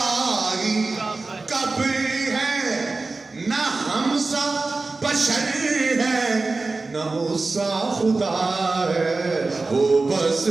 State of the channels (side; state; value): left; quieter; 3.6 dB